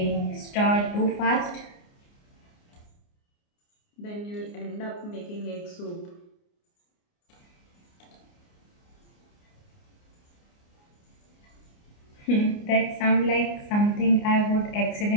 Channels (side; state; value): right; late; 29 ms